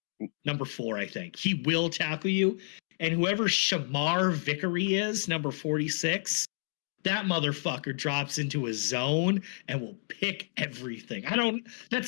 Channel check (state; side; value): silent; right; digital silence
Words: Yeah. Number 4, I think. He will tackle you. And whoever Shamar Vickery is, number 46, that motherfucker drops into a zone and will pick everything.